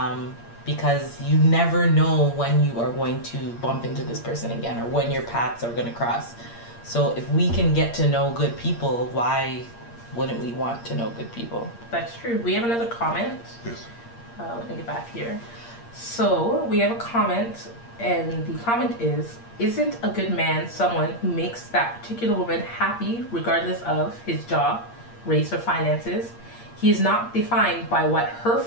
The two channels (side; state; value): right; late; 8.6 ms